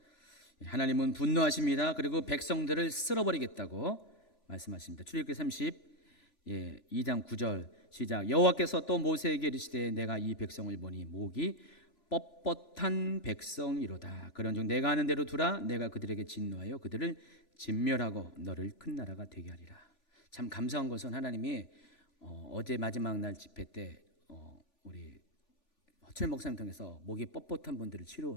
하나님은 분노하십니다. 그리고 백성들을 쓸어버리겠다고 말씀하십니다. 출애굽기 2장 9절 시작. 여호와께서 또 모세에게 이르시되 내가 이 백성을 보니 목이 뻣뻣한 백성이로다. 그런즉 내가 하는 대로 두라. 내가 그들에게 진노하여 그들을 진멸하고 너를 큰 나라가 되게 하리라. 참 감사한 것은 하나님이 어제 마지막 날 집회 때 우리 허철 목사님 통해서 목이 뻣뻣한 분들을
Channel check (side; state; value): right; late; 3.5 ms